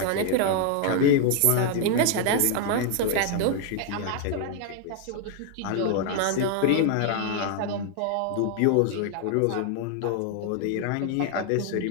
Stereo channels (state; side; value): different; both; correlation 0.00